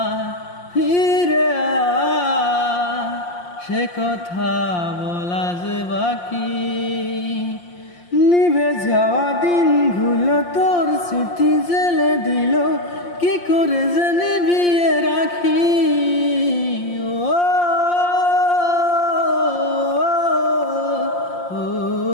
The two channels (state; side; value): late; right; 5.7 ms